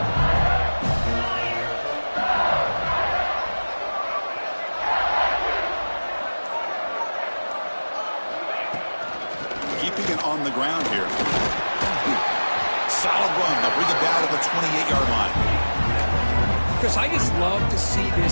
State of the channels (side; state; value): both; inverted; correlation -1.00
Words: Keeping it on the ground here. Solid run. They'll bring it down to the 28-yard line. Chris, I just love to see